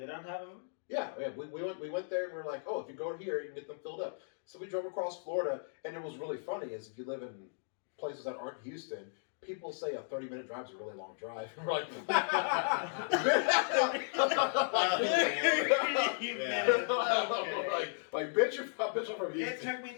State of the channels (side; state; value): right; silent; digital silence